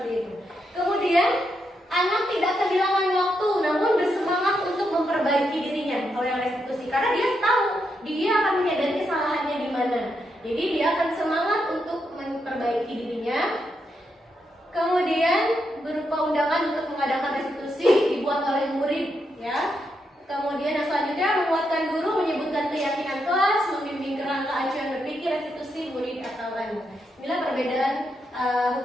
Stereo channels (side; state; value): both; normal; correlation 0.82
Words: itu. Kemudian anak tidak kehilangan waktu, namun bersemangat untuk memperbaiki dirinya. Kalau yang restitusi, karena dia tahu dia akan menyadari kesalahannya di mana. Jadi dia akan semangat untuk memperbaiki dirinya. Kemudian berupa undangan untuk mengadakan restitusi dibuat oleh murid, ya. Kemudian yang selanjutnya menguatkan guru, menyebutkan keyakinan kelas, membimbing kerangka acuan berpikir restitusi murid atau anak. Inilah perbedaan